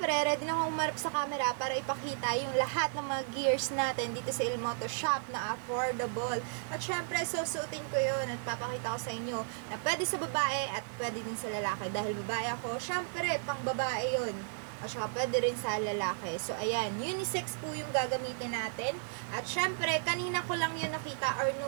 ready na akong umarap sa camera para ipakita yung lahat ng mga gears natin dito sa Ilmoto Shop na affordable. At syempre, susuotin ko yun at papakita ko sa inyo na pwede sa babae at pwede din sa lalaki. Dahil babae ako, syempre, pang babae yun. At saka pwede rin sa lalaki. So, ayan, unisex po yung gagamitin natin. At syempre, kanina ko lang yun nakita or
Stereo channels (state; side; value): silent; left; digital silence